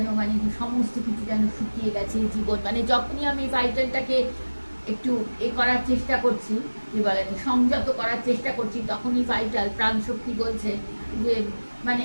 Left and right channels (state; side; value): inverted; both; correlation -1.00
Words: মানে সমস্ত কিছু যেন শুকিয়ে গেছে জীবন। মানে যখনই আমি ভাইটালটাকে একটু করার চেষ্টা করছি, কি বলে, সংযত করার চেষ্টা করছি, তখনই ভাইটাল প্রাণশক্তি বলছে যে মানে